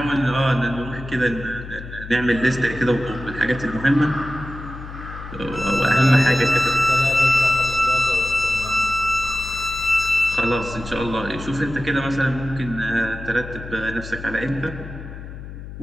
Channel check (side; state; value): left; noise; hum, 12 dB below the sound